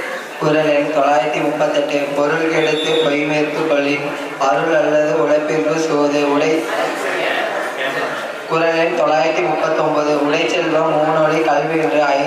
குரல் எண் 938. பொருள் கெடுத்து பொய்மேற்கு கொள்ளின் அருள் அல்லது உழைப்பிற்கு சோது உடை. குரல் எண் 939. உடை செல்வம் மூணொலி கல்வி என்று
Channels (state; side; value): identical; both; correlation 1.00